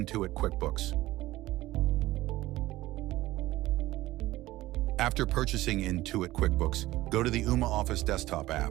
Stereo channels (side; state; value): left; quieter; 17.0 dB